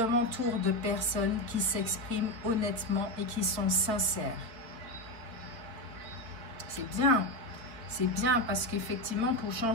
de personnes qui s'expriment honnêtement et qui sont sincères. C'est bien. C'est bien parce qu'effectivement, pour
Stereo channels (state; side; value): late; left; 4.3 ms